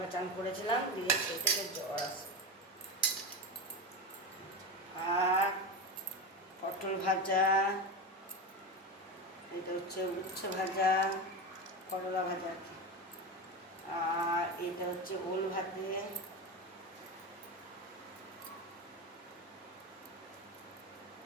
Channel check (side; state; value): both; normal; correlation 0.19